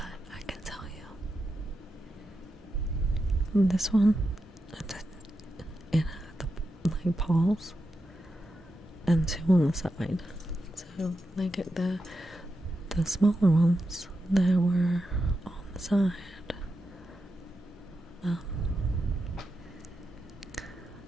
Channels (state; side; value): normal; both; correlation 0.88